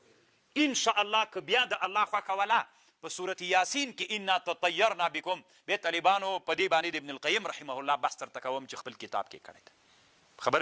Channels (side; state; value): both; identical; correlation 1.00